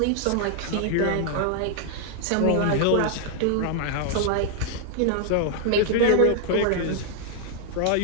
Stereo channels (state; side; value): different; both; correlation 0.00